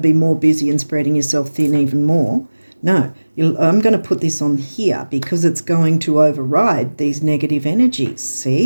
more busy and spreading yourself thin even more. No, I'm going to put this on here because it's going to override these negative energies,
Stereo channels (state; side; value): inverted; both; correlation -1.00